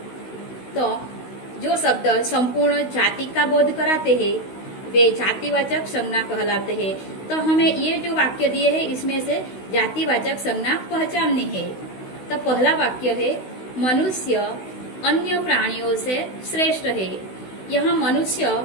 तो जो शब्द संपूर्ण जाति का बोध कराते हैं वे जातिवाचक संज्ञा कहलाते हैं। तो हमें ये जो वाक्य दिए हैं इसमें से जातिवाचक संज्ञा पहचाननी है। तो पहला वाक्य है मनुष्य अन्य प्राणियों से श्रेष्ठ है। यहाँ मनुष्य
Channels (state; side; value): late; right; 16 ms